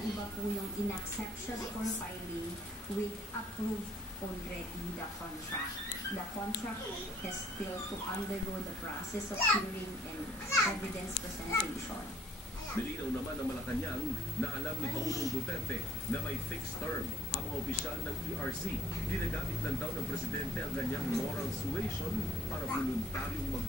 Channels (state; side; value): normal; both; correlation 0.61